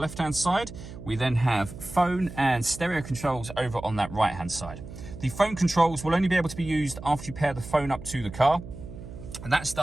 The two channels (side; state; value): right; noise; hum, 13 dB below the sound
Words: side. We then have phone and stereo controls over on that right-hand side. The phone controls will only be able to be used after you pair the phone up to the car, and that's